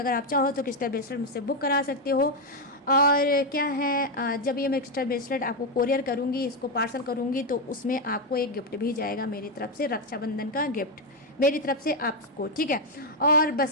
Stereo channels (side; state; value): both; normal; correlation 0.04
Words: अगर आप चाहो तो क्रिस्टल ब्रेसलेट मुझसे बुक करा सकते हो। और क्या है, जब ये मैं क्रिस्टल ब्रेसलेट आपको कोरियर करूँगी, इसको पार्सल करूँगी तो उसमें आपको एक गिफ्ट भी जाएगा मेरी तरफ से, रक्षाबंधन का गिफ्ट मेरी तरफ से आपको, ठीक है। और